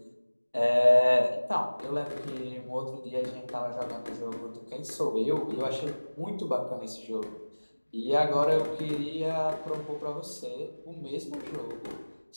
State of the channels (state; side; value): inverted; both; correlation -1.00